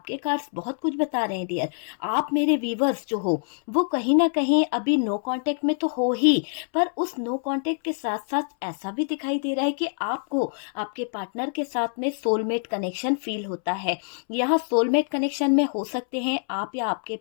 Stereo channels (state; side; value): silent; right; 61 dB below the other